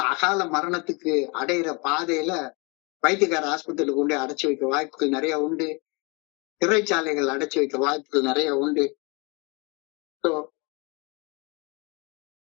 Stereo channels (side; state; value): right; quieter; 29.8 dB